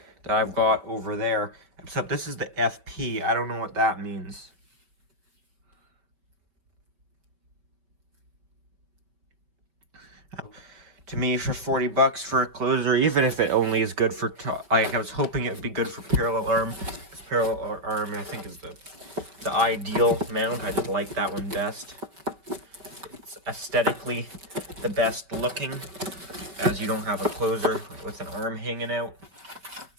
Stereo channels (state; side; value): late; left; 5.2 ms